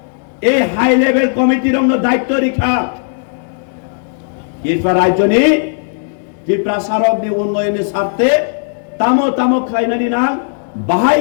এই হাই লেভেল কমিটির দায়িত্ব রেখা ত্রিপুরা রাজ্যনি ত্রিপুরা সারকনি উন্নয়নের স্বার্থে তামো তামো খাইনানি নাং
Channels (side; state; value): right; silent; digital silence